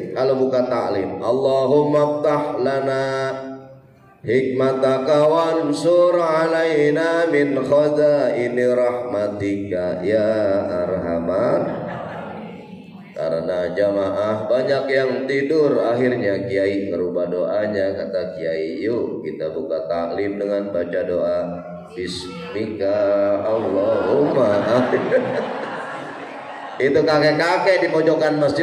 kalau buka taklim, Allahumma ftah lana hikmataka wansur alaina min khazaini rahmatika ya arhamar. Karena jamaah banyak yang tidur, akhirnya kiai ngerubah doanya. Kata kiai, yuk kita buka taklim dengan baca doa Bismika Allahumma. Itu kakek-kakek di pojokan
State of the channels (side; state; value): both; identical; correlation 1.00